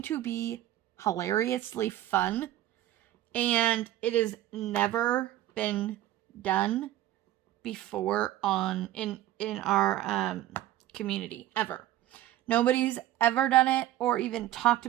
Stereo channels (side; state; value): left; quieter; 13.9 dB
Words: to be hilariously fun. And it has never been done before in our community, ever. Nobody's ever done it or even talked